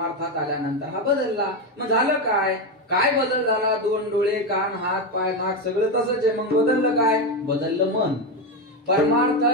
आल्यानंतर हा बदलला. मग झालं काय? काय बदल झाला? 2 डोळे, कान, हात, पाय, नाक सगळं तसंच आहे. मग बदललं काय? बदललं मन.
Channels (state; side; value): normal; both; correlation 0.12